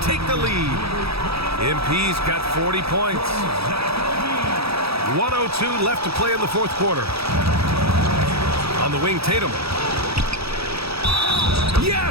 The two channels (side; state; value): left; late; 0.77 ms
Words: take the lead. MP's got 40 points. 1:02 left to play in the fourth quarter. On the wing, Tatum.